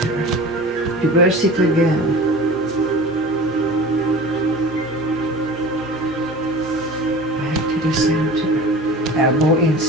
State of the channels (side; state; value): both; normal; correlation 0.38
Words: reverse it again. The center, elbow